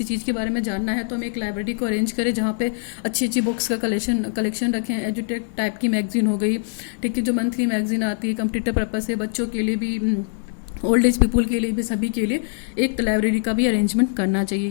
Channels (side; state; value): right; silent; 64 dB below the other